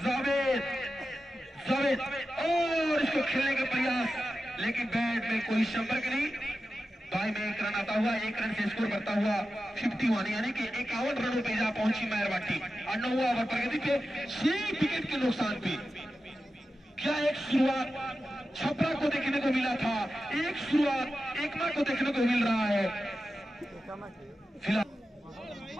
जावेद और इसको खेलने का प्रयास, लेकिन बैट में कोई संपर्क नहीं। बाई में 1 रन आता हुआ 1 रन से स्कोर करता हुआ 51 यानी कि 51 रनों पे जा पहुंची मेहरवा टीम। और 9वां ओवर प्रगति पे 6 विकेट के नुकसान पे। क्या एक शुरुआत छपरा को देखने को मिला था, एक शुरुआत एकमा को देखने को मिल रहा है। फिलहाल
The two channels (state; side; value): normal; both; correlation 0.92